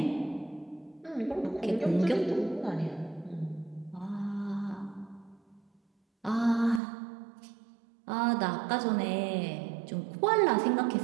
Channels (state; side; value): drops out; left; at 6.8 s